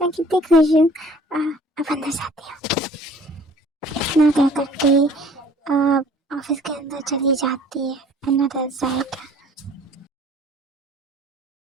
कितनी खुश हूँ। अब अंदर जाती हूँ। इतना क्या करके ऑफिस के अंदर चली जाती है। Another side.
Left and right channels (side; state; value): both; normal; correlation 0.53